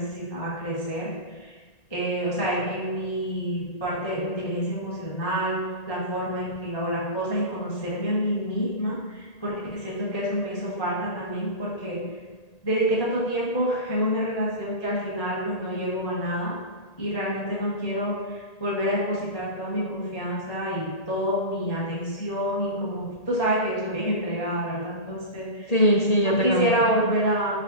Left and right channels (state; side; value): late; right; 1.8 ms